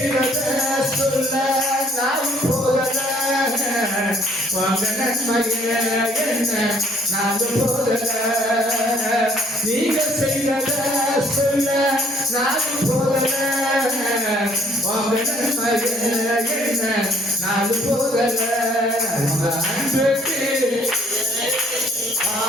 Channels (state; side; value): normal; both; correlation 0.61